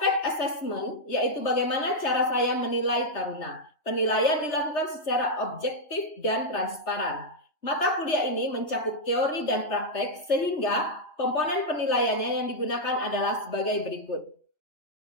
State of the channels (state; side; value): late; right; 3.3 ms